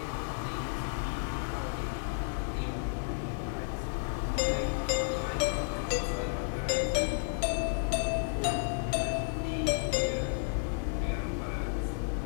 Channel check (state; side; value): silent; right; digital silence